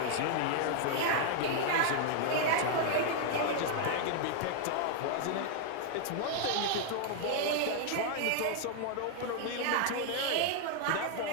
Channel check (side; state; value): both; different; correlation 0.00